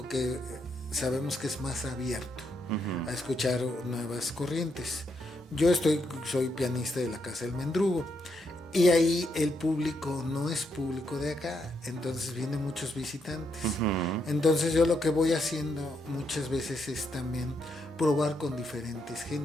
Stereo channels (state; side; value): normal; both; correlation 0.79